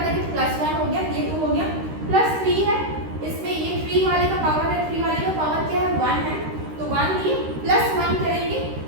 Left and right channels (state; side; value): late; left; 13 ms